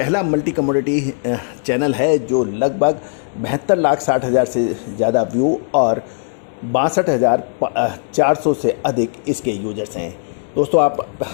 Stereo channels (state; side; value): silent; right; digital silence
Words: मल्टी कमोडिटी चैनल है जो लगभग 72,60,000 से ज़्यादा व्यू और 62,400 से अधिक इसके यूजर्स हैं। दोस्तों आप